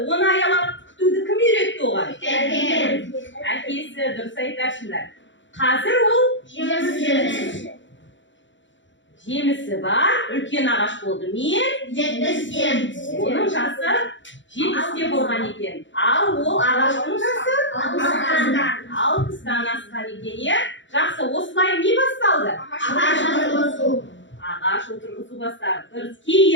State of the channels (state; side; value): late; right; 0.54 ms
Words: оны аялап күтуді кім үйретті оған? Әкесі, дұрыс айтасыңдар. Қазір ол жемісі бар, үлкен ағаш болды. Мен? Оның жасы 70-те болған екен. Ал ол ағаштың жасы? 60-тан асқан екен, е? Жақсы, осылай не басталды? Ағаш отырғызу басталды. Дұрыс,